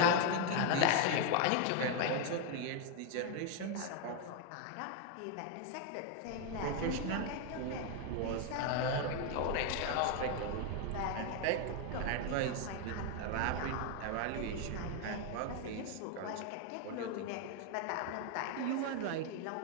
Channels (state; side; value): different; both; correlation 0.01